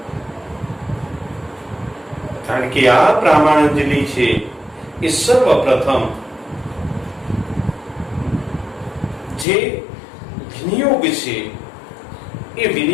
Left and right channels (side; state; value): right; drops out; at 9.5 s